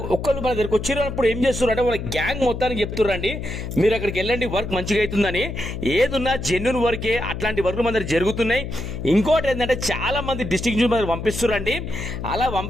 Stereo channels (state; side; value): noise; left; hum, 6 dB below the sound